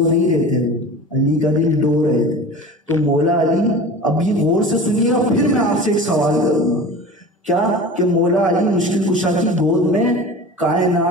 نہیں رہے تھے، علی کا دل ڈو رہے تھے، تو مولا علی، اب یہ غور سے سنیے گا، پھر میں آپ سے ایک سوال کروں گا، کیا کہ مولا علی مشکل کشا کی گود میں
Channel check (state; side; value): normal; both; correlation 0.35